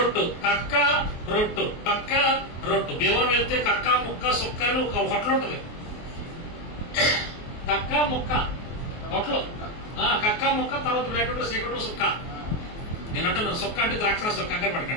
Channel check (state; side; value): late; right; 24 ms